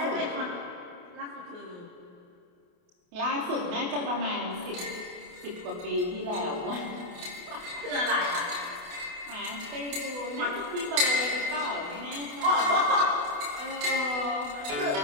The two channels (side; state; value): left; late; 28 ms